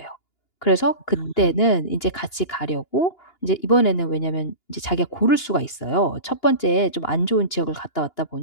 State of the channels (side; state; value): right; late; 2.9 ms